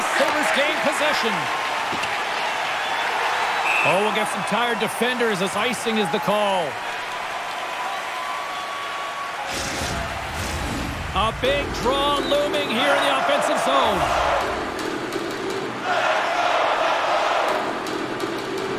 Sabres gain possession. Oh, we'll get some tired defenders as icing is the call. A big draw looming here in the offensive zone.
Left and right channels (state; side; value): identical; both; correlation 1.00